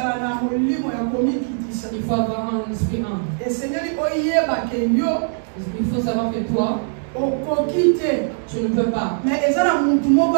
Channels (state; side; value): silent; left; digital silence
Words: faut avoir un esprit humble. Il faut savoir que toi, tu ne peux pas. Mais